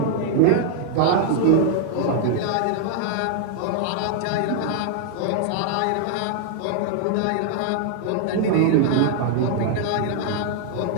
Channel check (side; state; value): both; different; correlation 0.00